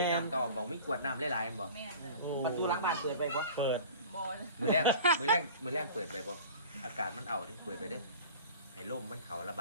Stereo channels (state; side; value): inverted; both; correlation -0.41